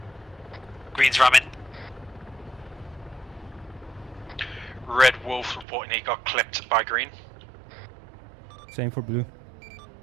Green's ramming. Red Wolf reporting he got clipped by Green. Same for blue.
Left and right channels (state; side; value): drops out; left; at 5.7 s